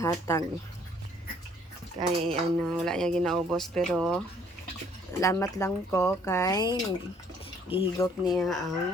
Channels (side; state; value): both; normal; correlation 0.61